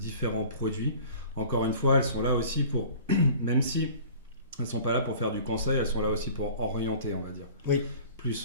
produits. Encore une fois, elles sont là aussi pour, même si elles ne sont pas là pour faire du conseil, elles sont là aussi pour orienter, on va dire. Oui.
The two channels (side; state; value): both; inverted; correlation -0.45